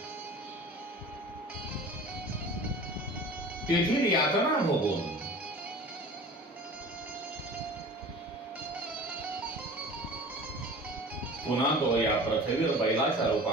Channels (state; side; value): normal; both; correlation 0.40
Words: तेथील यातना भोगून पुन्हा तो या पृथ्वीवर बैलाच्या